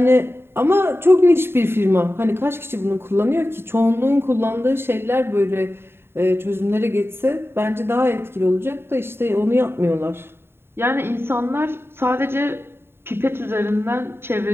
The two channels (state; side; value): late; left; 0.11 ms